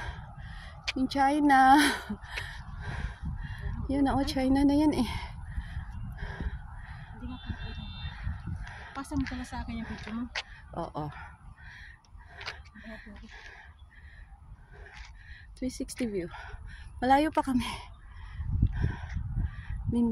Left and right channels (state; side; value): identical; both; correlation 1.00